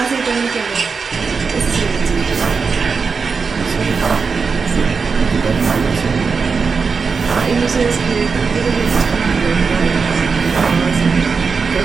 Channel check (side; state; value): left; quieter; 5.2 dB